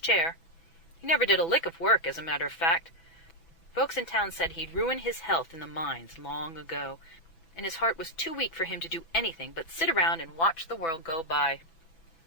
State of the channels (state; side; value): late; right; 6.0 ms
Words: He never did a lick of work, as a matter of fact. Folks in town said he'd ruined his health in the mines long ago, and his heart was too weak for him to do anything but sit around and watch the world go by.